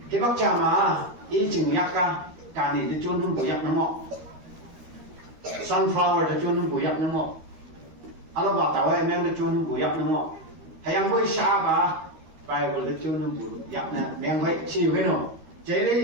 cái bác cha mà ý chừng yak cả này thì chôn không bùi yak nó ngọ sunflower thì chôn không bùi yak nó ngọ anh bảo tao em thì chôn không bùi yak nó ngọ hay anh bôi sa bà Bible thì chôn không bùi yak nè em vậy chịu cái nào chế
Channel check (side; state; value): left; late; 13 ms